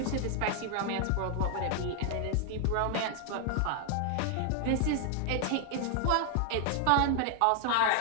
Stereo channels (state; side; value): different; both; correlation 0.00